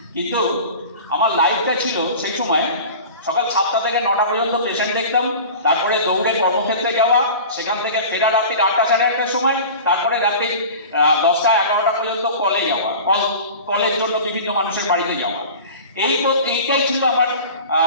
কিন্তু আমার লাইফটা ছিল সেই সময় সকাল 7টা থেকে 9টা পর্যন্ত পেশেন্ট দেখতাম, তারপরে দৌড়ে কর্মক্ষেত্রে যাওয়া, সেখান থেকে ফেরা রাত্রি 8টা সাড়ে 8টার সময়, তারপরে রাত্রি 10টা 11টা পর্যন্ত কলে যাওয়া, কলের জন্য বিভিন্ন মানুষের বাড়িতে যাওয়া। এইটাই ছিল আমার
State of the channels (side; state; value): both; inverted; correlation -0.37